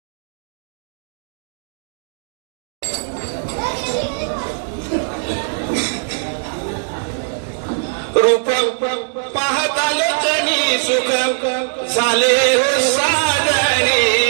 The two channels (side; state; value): left; silent; 66 dB below the other